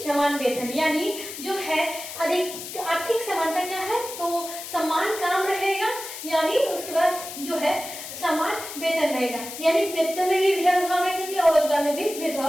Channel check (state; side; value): noise; left; hiss, 10 dB below the sound